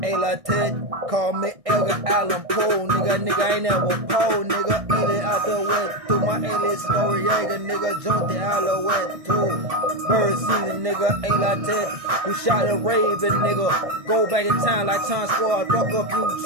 call me Elgin Allen Poe, nigga ain't never pole, nigga. Alien out the wet to my alien Noriega, nigga. Santiago wet too. Bird season, nigga, elated. Who shot a raven, nigga? Go back in time like Time Squad, fuck up you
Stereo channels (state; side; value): late; left; 1.6 ms